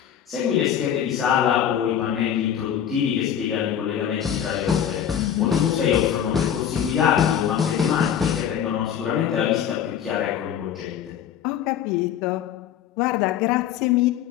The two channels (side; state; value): right; quieter; 9.4 dB